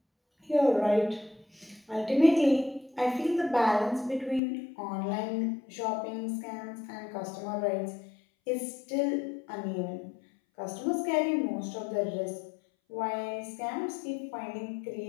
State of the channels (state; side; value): drops out; right; at 4.4 s